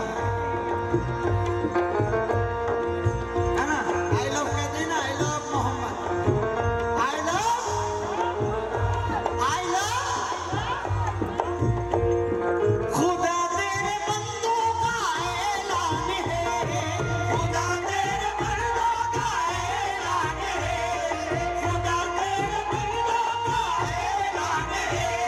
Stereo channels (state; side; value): identical; both; correlation 1.00